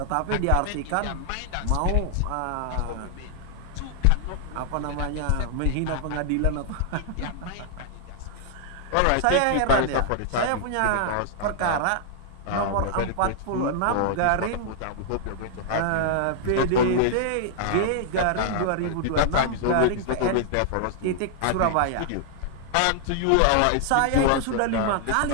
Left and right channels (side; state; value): both; different; correlation -0.01